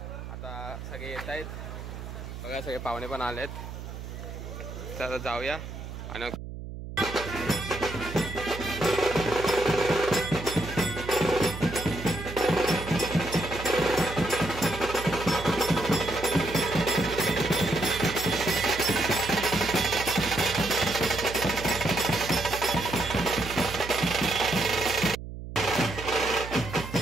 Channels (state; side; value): noise; right; hum, 10 dB below the sound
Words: आता सगळे येत आहेत बघा, सगळे पाहुणे पण आलेत. चला जाऊया. आणि